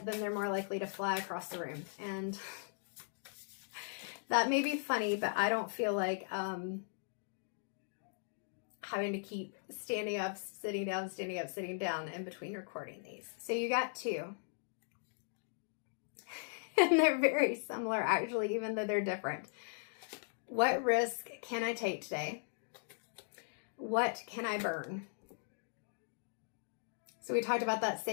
then they're more likely to fly across the room. And that may be funny, but I don't feel like having to keep standing up, sitting down, standing up, sitting down in between recording these. So you got 2. And they're very similar, actually, even though they're different. What risk can I take today? What can I burn? So we talked about that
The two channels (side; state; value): right; silent; digital silence